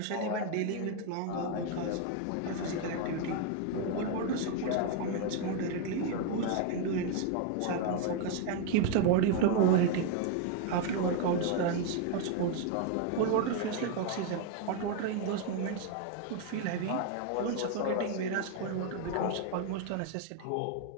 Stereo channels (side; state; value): both; different; correlation 0.01